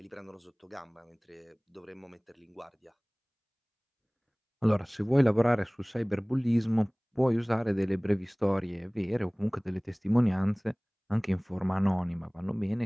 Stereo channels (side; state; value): both; identical; correlation 1.00